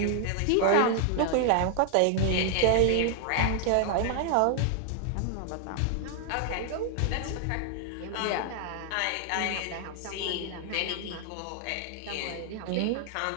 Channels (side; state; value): both; different; correlation 0.00